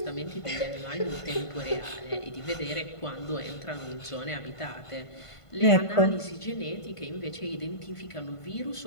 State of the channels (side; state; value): right; late; 1.5 ms